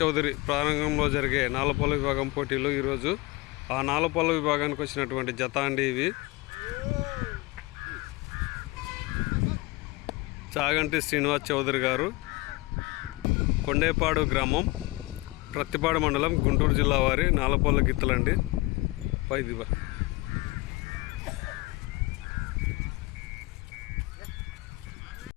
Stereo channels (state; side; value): quieter; right; 22.1 dB